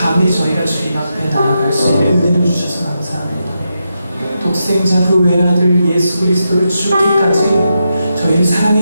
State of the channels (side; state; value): both; inverted; correlation -0.86